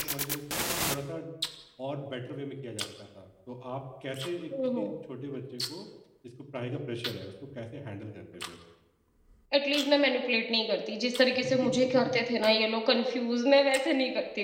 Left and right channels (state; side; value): identical; both; correlation 1.00